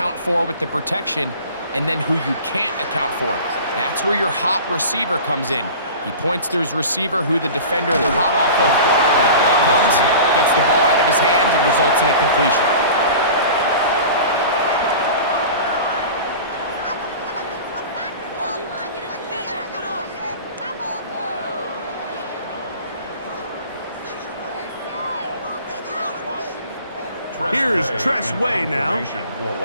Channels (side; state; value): both; inverted; correlation -0.39